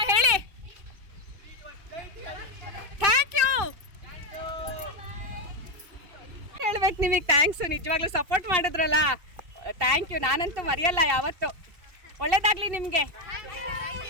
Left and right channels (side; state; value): left; late; 2.6 ms